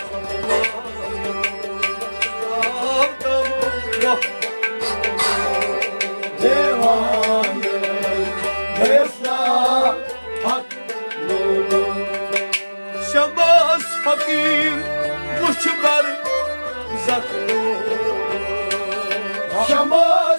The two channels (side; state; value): both; inverted; correlation -1.00